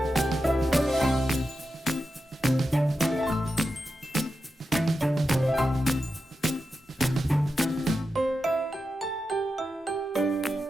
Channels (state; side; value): normal; both; correlation 0.90